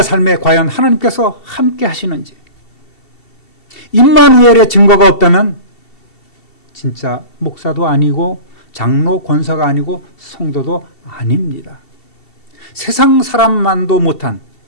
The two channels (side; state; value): right; late; 2.7 ms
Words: 삶에 과연 하나님께서 함께 하시는지 임마누엘의 증거가 없다면 진짜 목사도 아니고 장로 권사가 아니고 성도도 아닙니다. 세상 사람만도 못한